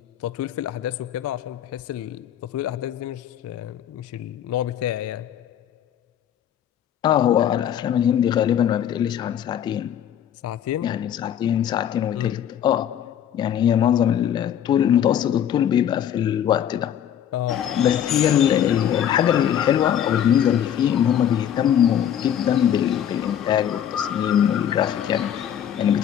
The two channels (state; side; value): quieter; right; 9.9 dB